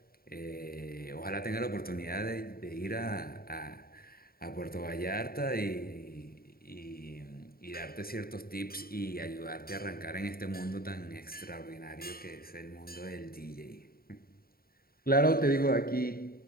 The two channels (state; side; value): late; right; 0.43 ms